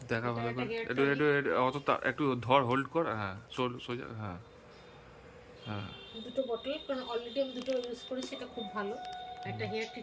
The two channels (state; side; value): identical; both; correlation 1.00